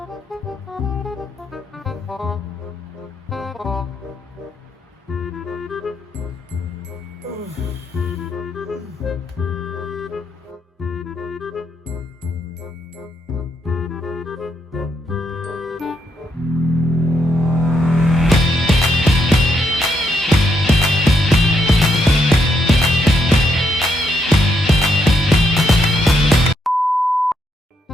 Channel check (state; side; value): normal; both; correlation 0.78